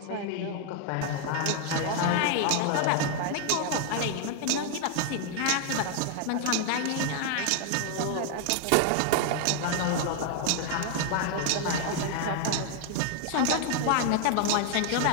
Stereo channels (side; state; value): both; different; correlation 0.00